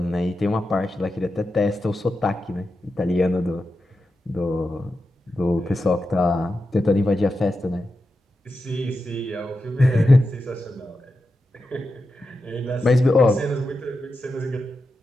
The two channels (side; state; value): both; normal; correlation 0.89